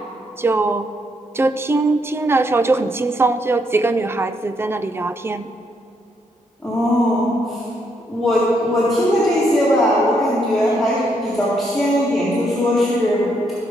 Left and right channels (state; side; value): normal; both; correlation 0.75